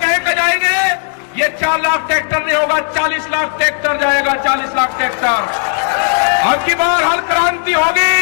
कह कर जाएंगे ये 4 लाख ट्रैक्टर नहीं होगा, 40 लाख ट्रैक्टर जाएगा, 40 लाख ट्रैक्टर। अब की बार हर क्रांति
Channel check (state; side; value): silent; right; digital silence